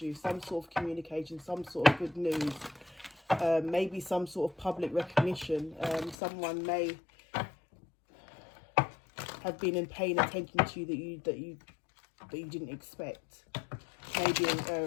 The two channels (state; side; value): drops out; right; at 6.2 s